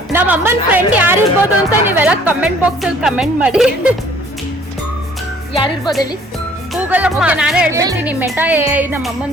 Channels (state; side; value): normal; both; correlation 0.56